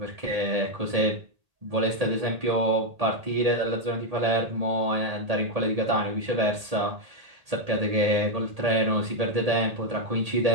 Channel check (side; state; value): left; late; 1.8 ms